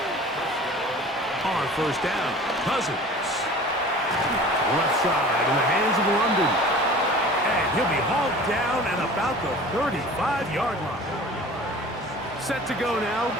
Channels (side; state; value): both; normal; correlation 0.42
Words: On 1st down, Cousins. Left side in the hands of London. And he'll be hauled down at about the 35-yard line. Set to go now